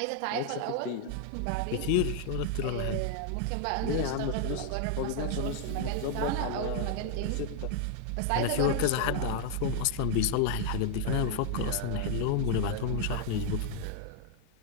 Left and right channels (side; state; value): both; different; correlation 0.00